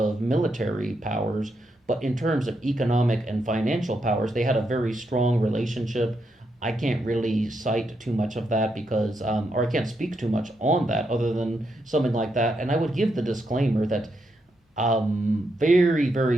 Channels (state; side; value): normal; both; correlation 0.81